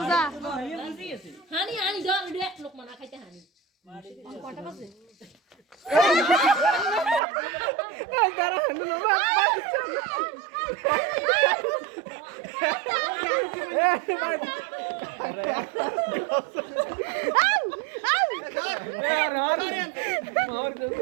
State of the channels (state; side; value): drops out; left; at 7.2 s